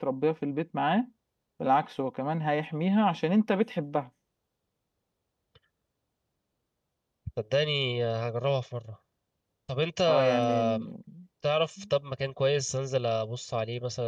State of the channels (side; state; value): both; identical; correlation 1.00